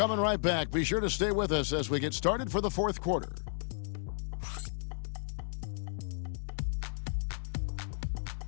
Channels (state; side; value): silent; right; digital silence